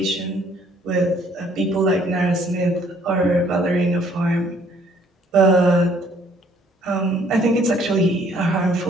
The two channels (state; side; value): normal; both; correlation 0.62